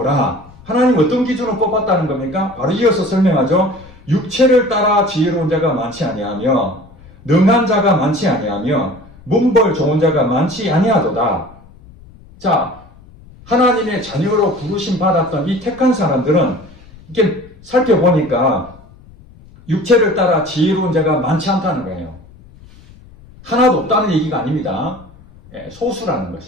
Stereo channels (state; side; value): noise; left; rumble, 23 dB below the sound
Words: 하나님 어떤 기준으로 뽑았다는 겁니까? 바로 이어서 설명하죠. 육체를 따라 지혜로운 자가 많지 아니하며 능한 자가 많지 아니하며 문벌 좋은 자가 많지 아니하도다. 자, 하나님의 자녀로 부르심 받았던 이 택한 사람들은 이렇게 살펴보니까 육체를 따라 지혜로운 자가 많지 않다는 거예요. 하나도 없다는 얘기가 아닙니다. 소수라는